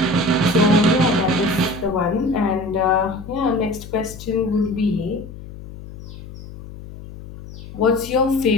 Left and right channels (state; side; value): noise; left; hum, 14 dB below the sound